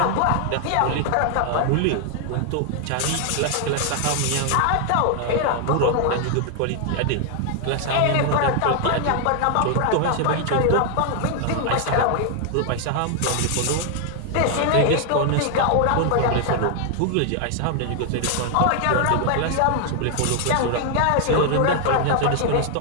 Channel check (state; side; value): different; both; correlation 0.00